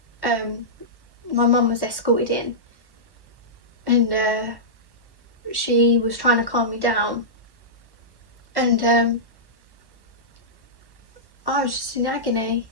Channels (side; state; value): left; late; 1.1 ms